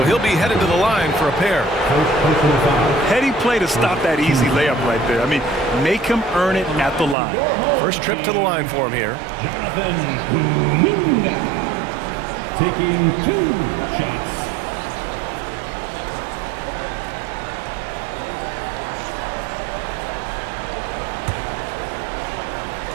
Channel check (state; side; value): drops out; left; at 7.2 s